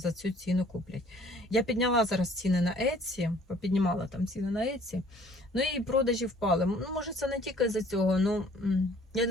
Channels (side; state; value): both; normal; correlation 0.56